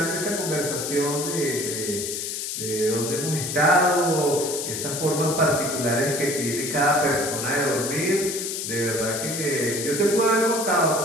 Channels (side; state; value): left; noise; hiss, 4 dB below the sound